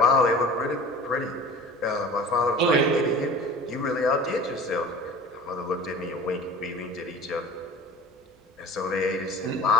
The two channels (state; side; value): normal; both; correlation 0.39